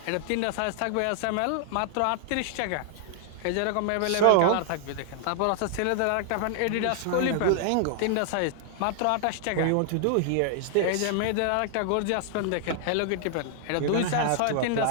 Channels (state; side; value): different; both; correlation -0.01